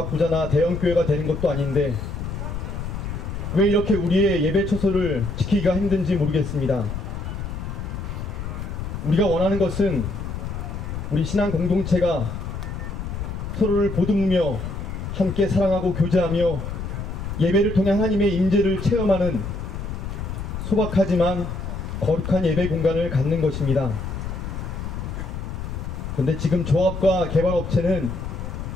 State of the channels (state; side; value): noise; left; rumble, 6 dB below the sound